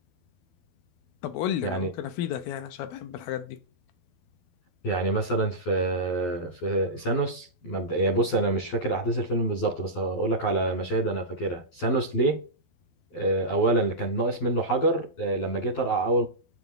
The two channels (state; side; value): late; right; 12 ms